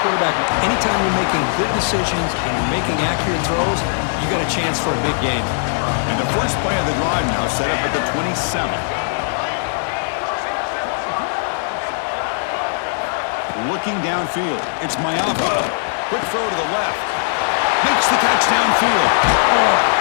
quarterback. Anytime you're making good decisions and you're making accurate throws, you got a chance for a big game. And the first play of the drive now set up at the 27. Looking downfield, it's Mayava. Quick throw to the left. Makes the catch downfield.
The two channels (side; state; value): right; silent; digital silence